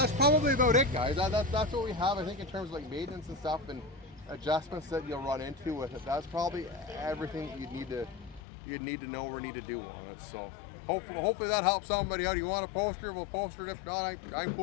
probably about it, guys. That's what we have, I think, in terms of like maintenance and stuff and adjustments that you'll run into with it. That's probably everything that you'd need to know or need to do on it. So hopefully that helps somebody out. You want a poster, we'll poster it. If not, I'm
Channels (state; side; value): drops out; right; at 8.4 s